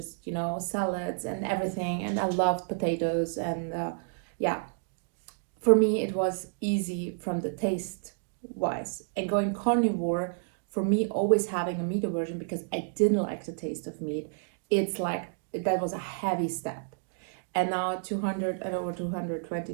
salads and everything. And I loved potatoes. And yeah, for me, it was easy from the taste wise. And going carnivore, for me, always having a meat aversion because I didn't like the taste of meat, it's like that was a heavy step. And now 200 and over 220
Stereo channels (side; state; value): left; silent; digital silence